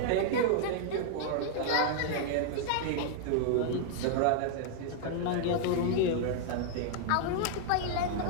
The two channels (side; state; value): both; different; correlation -0.01